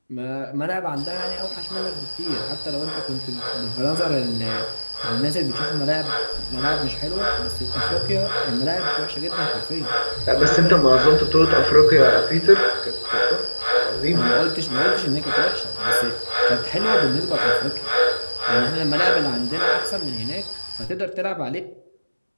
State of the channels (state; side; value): inverted; both; correlation -1.00